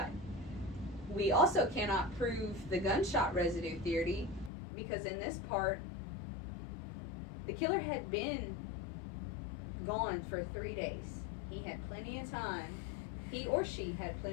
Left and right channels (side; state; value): right; drops out; at 4.5 s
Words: We also cannot prove the gunshot residue theory because in this part, the killer had been gone for 3 days. He had plenty of time, he or she had